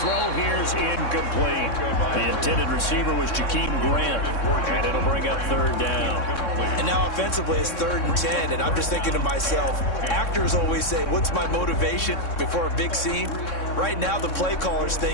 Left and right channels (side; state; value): right; late; 3.6 ms